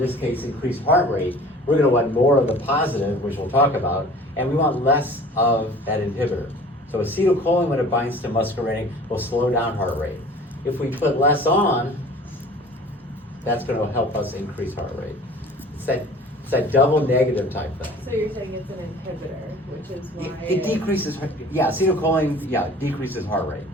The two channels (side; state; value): both; normal; correlation 0.46